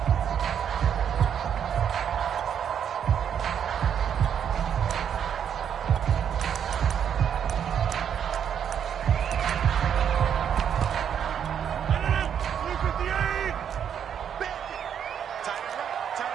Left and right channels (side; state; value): left; quieter; 8.5 dB